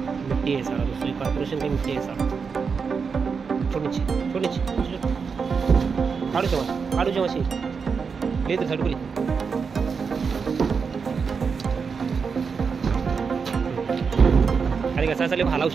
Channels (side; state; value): left; quieter; 5.6 dB